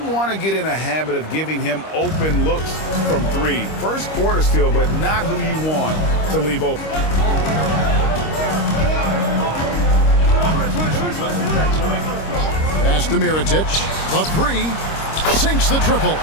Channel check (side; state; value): right; late; 25 ms